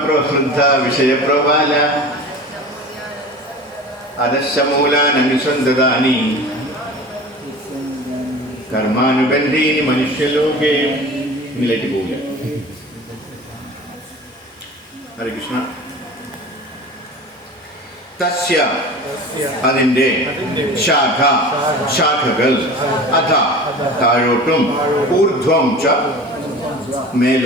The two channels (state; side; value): normal; both; correlation 0.37